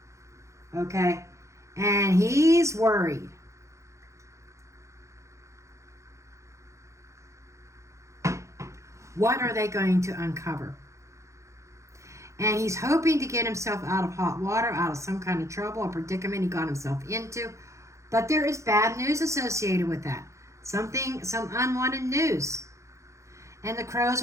Okay? And he's worried. What are they going to uncover? And he's hoping to get himself out of hot water, out of some kind of trouble or predicament he got himself into. But there is bad news associated with that. Some unwanted news. And the crows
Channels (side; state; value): left; late; 0.15 ms